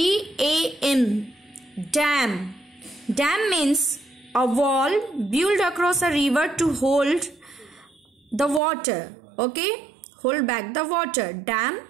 Dam. Dam means a wall built across a river to hold the water. Okay. Hold back the water. Dam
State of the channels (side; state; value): left; drops out; at 8.6 s